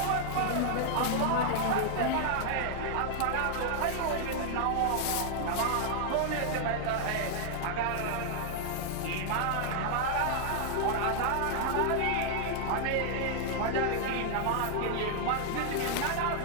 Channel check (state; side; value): different; both; correlation -0.01